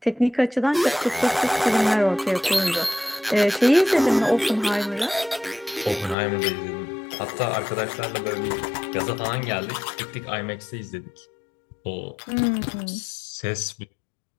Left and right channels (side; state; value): right; drops out; at 6.2 s